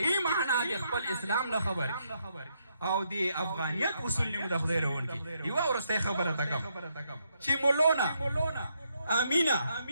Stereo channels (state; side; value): inverted; both; correlation -0.77